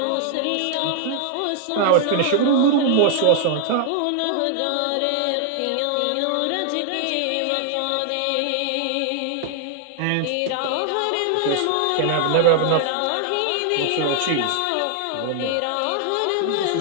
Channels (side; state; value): both; different; correlation 0.00